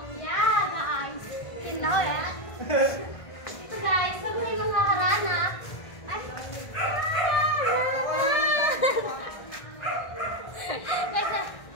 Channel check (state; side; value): late; right; 1.5 ms